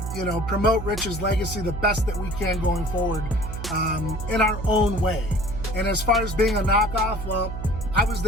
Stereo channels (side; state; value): right; noise; hum, 7 dB below the sound